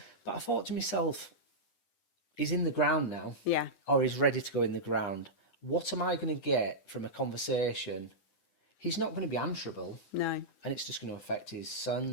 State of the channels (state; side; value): late; right; 9.9 ms